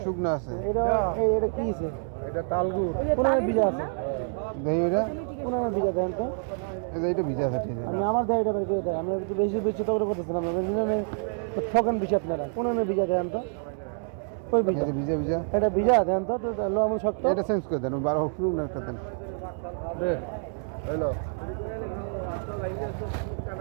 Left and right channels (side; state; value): left; silent; 60 dB below the other